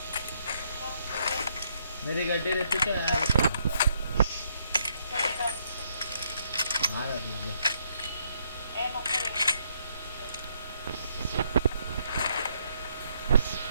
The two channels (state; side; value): inverted; both; correlation -0.72